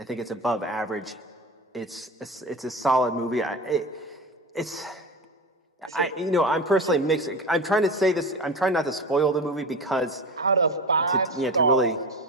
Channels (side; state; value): both; normal; correlation 0.28